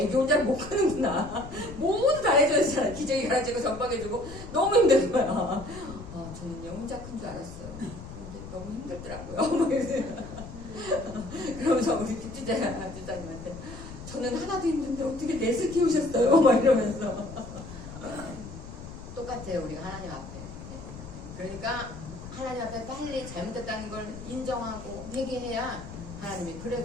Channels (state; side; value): noise; left; rumble, 13 dB below the sound